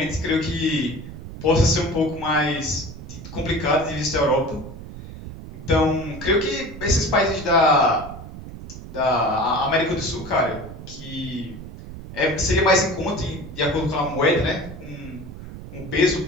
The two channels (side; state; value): right; noise; rumble, 12 dB below the sound